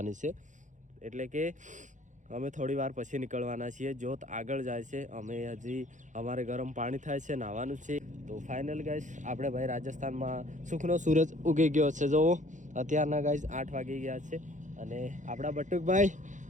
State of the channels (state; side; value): late; left; 0.36 ms